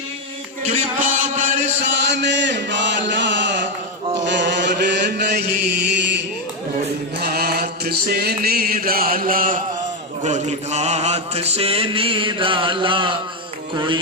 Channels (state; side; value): normal; both; correlation 0.07